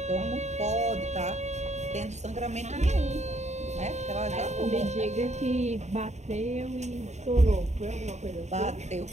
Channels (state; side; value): late; left; 0.33 ms